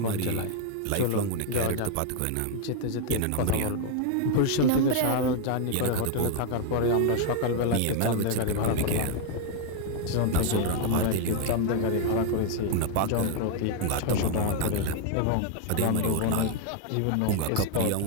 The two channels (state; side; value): different; both; correlation 0.00